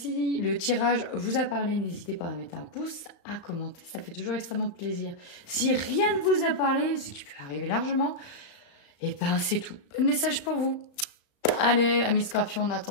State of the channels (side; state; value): right; late; 35 ms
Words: le tirage vous a parlé, n'hésitez pas à mettre un pouce, à commenter, ça fait toujours extrêmement plaisir. Si rien ne vous a parlé, ce qui peut arriver largement, et c'est tout. Pas de message pour vous. Allez, amis Scorpion, en